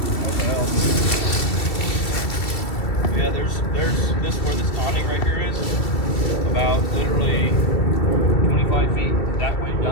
Yeah, there's this where this awning right here is. About literally 25 feet that way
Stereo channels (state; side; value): late; right; 2.8 ms